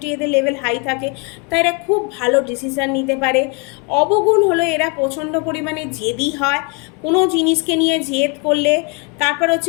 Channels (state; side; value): quieter; right; 31.7 dB